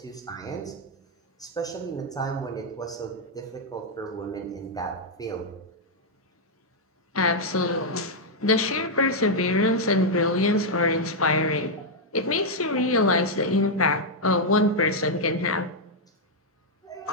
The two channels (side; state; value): both; normal; correlation -0.03